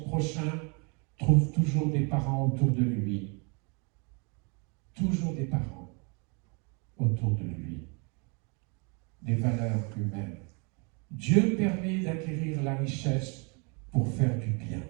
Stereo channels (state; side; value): quieter; left; 33.7 dB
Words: prochain trouve toujours des parents autour de lui. Toujours des parents autour de lui. Des valeurs humaines. Dieu permet d'acquérir la richesse pour faire du bien.